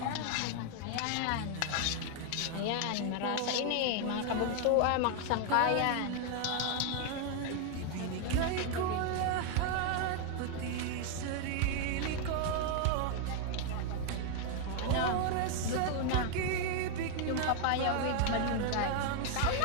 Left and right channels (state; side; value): different; both; correlation 0.00